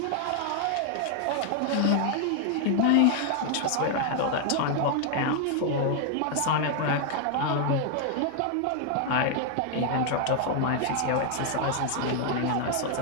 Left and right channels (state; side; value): different; both; correlation 0.00